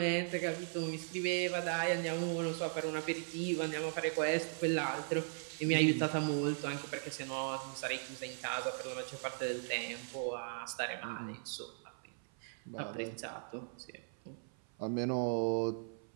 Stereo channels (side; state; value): left; silent; 52 dB below the other